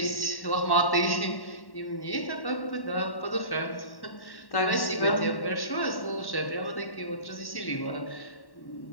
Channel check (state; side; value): late; right; 1.1 ms